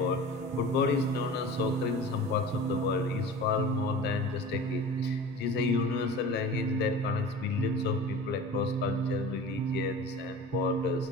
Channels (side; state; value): both; normal; correlation 0.37